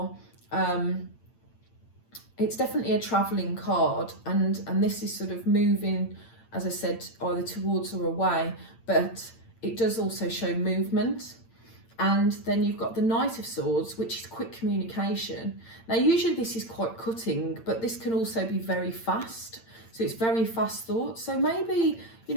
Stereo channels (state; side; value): late; right; 8.8 ms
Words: it's definitely a traveling card, and this is sort of moving, as I said, either towards or away, but it does also show movement. And then you've got the Knight of Swords, which is quick communication. Now, usually this is quite cutting, but this can also be very fast. So it's very fast thoughts. So maybe, you